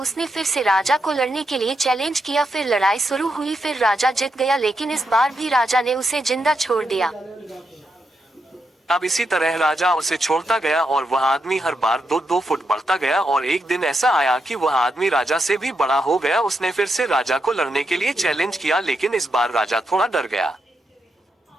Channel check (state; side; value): normal; both; correlation 0.83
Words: फिर से राजा को लड़ने के लिए चैलेंज किया। फिर लड़ाई शुरू हुई, फिर राजा जीत गया, लेकिन इस बार भी राजा ने उसे जिंदा छोड़ दिया। अब इसी तरह राजा उसे छोड़ता गया और वह आदमी हर बार 2-2 फुट बढ़ता गया और एक दिन ऐसा आया कि वह आदमी राजा से भी बड़ा हो गया। उसने फिर से राजा को लड़ने के लिए चैलेंज किया, लेकिन इस बार राजा थोड़ा डर गया।